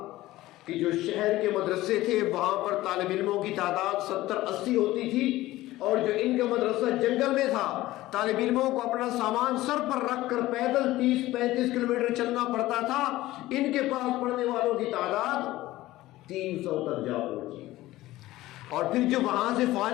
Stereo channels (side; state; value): right; quieter; 16.8 dB